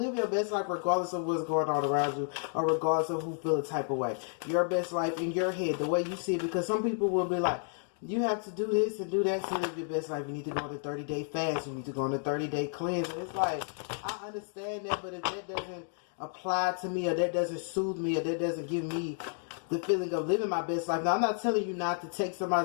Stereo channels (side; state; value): right; silent; 57 dB below the other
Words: your best life regardless of what's going on around you or regardless of who feel a type of way. Your best life in your head, the way you see it. Because some people will be like, you have to do this and do that to live your best life. You need to go on a 30-day fast. You need to go on a 30-day cleanse. And it's like, I understand that, but if that doesn't apply to me or that doesn't soothe me or that doesn't give me the feeling of living my best life. Now, I'm not telling you not to take